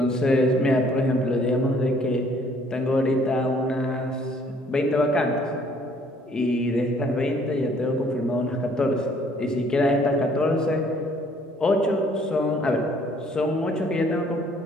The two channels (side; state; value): both; normal; correlation 0.61